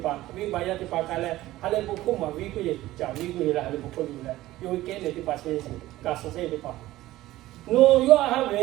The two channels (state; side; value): quieter; left; 16.2 dB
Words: wi ba ya ti pa kai le ha le bu ko ma wi ku ye cha wi ku ye la ha le bu ko ni le yo ke ne ti pa se ka so se ti pa no yo ha